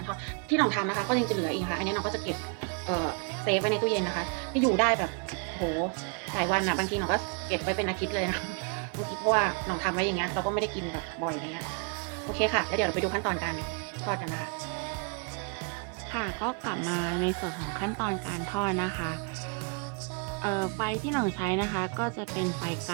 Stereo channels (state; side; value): quieter; left; 36.7 dB